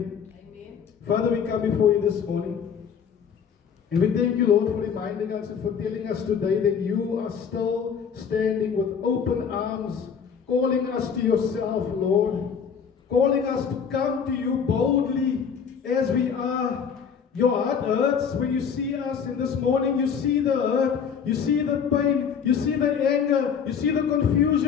Father, we come before you this morning. And we thank you, Lord, for reminding us and for telling us today that you are still standing with open arms, calling us to yourself, Lord, calling us to come to you boldly as we are. Your heart hurts when you see us, and this morning you see the hurt, you see the pain, you see the anger, you see the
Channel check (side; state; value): right; quieter; 6.9 dB